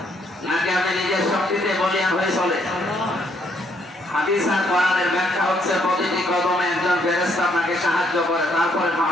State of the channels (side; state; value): both; normal; correlation 0.70